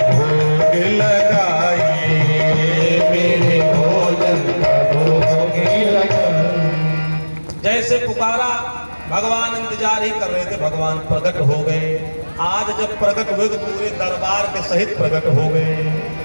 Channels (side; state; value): both; inverted; correlation -1.00